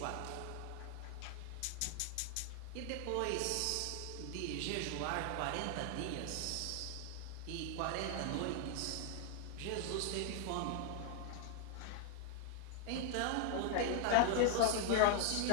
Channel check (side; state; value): both; different; correlation 0.00